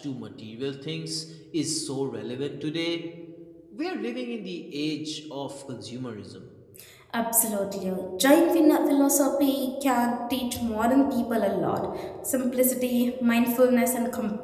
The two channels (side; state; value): both; identical; correlation 1.00